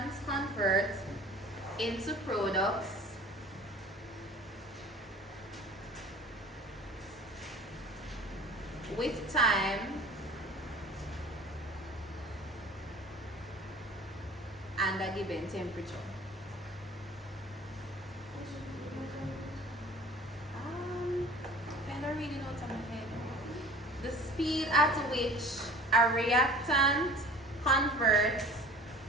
convert into products with time and a given temperature. Kind of reading out speed at which a reactant converts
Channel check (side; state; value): both; normal; correlation 0.43